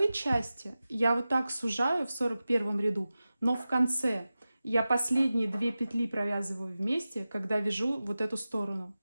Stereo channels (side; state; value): both; inverted; correlation -0.95